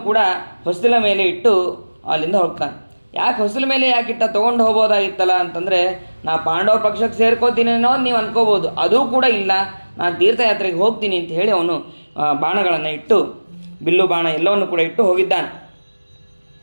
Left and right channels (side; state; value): both; inverted; correlation -1.00